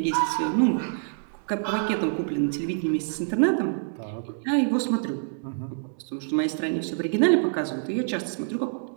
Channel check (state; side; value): silent; left; digital silence